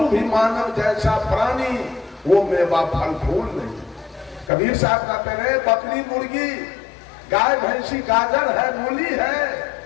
भी मानव जैसा प्राणी, वो मेवा फल फूल नहीं। कबीर साहब कहते रहे, बकरी मुर्गी, गाय भैंसी, गाजर है, मूली है,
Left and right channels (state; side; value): drops out; right; at 4.5 s